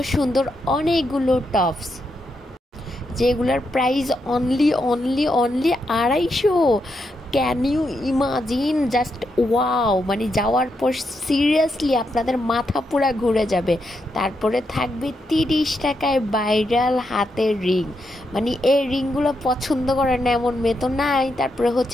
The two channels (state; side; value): normal; both; correlation 0.82